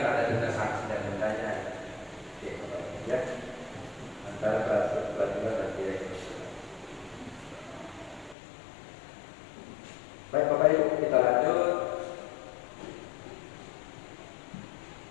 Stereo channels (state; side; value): drops out; right; at 8.3 s